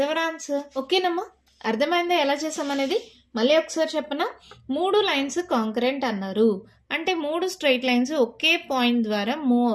our answer. ఓకేనమ్మా? అర్థమైందా ఎలా చేసామనేది? మళ్ళీ ఒకసారి చెప్పనా? 3 లైన్స్ కాంకరెంట్ అన్నారు అంటే 3 స్ట్రైట్ లైన్స్ ఒకే పాయింట్ ద్వారా మూవ్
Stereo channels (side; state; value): both; identical; correlation 1.00